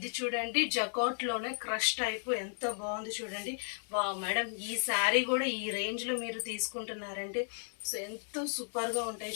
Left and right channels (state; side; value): silent; right; 55 dB below the other